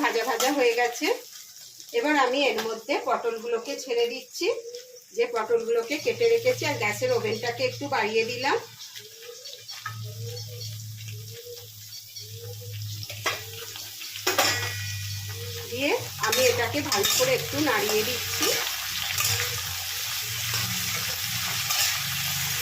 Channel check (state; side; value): identical; both; correlation 1.00